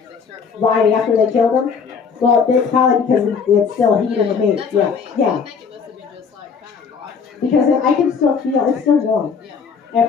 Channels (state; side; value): quieter; right; 5.9 dB